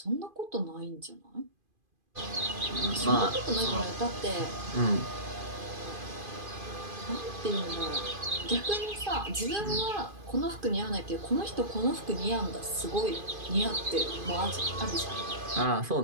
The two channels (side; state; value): left; late; 2.5 ms